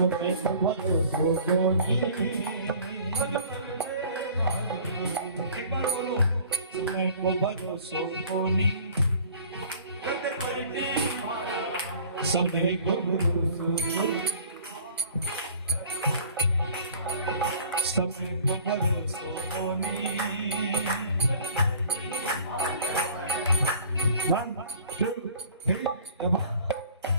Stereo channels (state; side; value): inverted; both; correlation -0.48